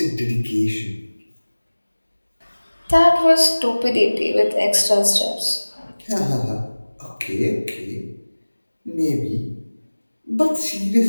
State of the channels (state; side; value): inverted; both; correlation -1.00